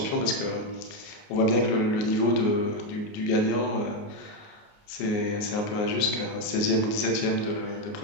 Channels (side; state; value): right; late; 29 ms